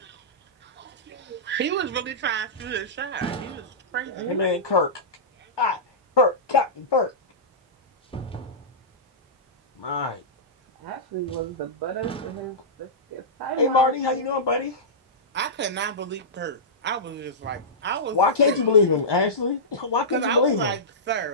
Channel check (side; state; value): both; normal; correlation -0.15